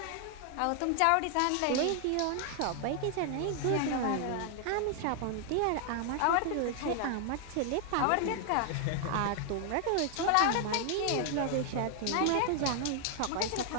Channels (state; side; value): different; both; correlation 0.00